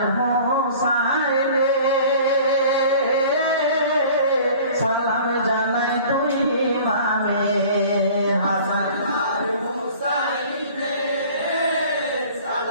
হোসাইনে সালাম জানাই তুই ইমামে হাসান আর হুসাইনে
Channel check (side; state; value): both; inverted; correlation -0.47